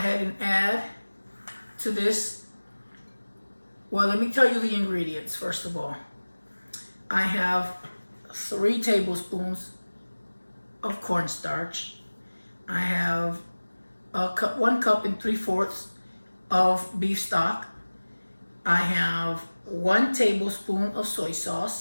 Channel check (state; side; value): inverted; both; correlation -1.00